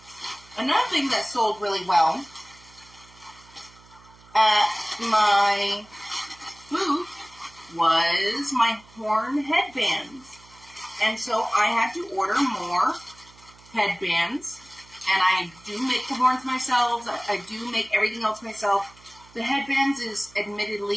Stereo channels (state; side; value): noise; right; hum, 25 dB below the sound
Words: another thing that sold really well at my booth was my horn headbands. And so I had to order more headbands. And I do make the horns myself. I do make everything else myself. The headbands is